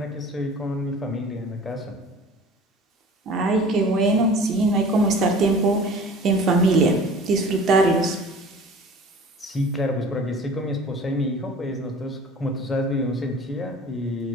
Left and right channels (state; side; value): normal; both; correlation 0.44